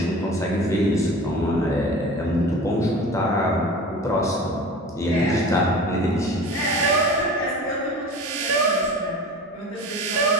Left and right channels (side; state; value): both; normal; correlation 0.37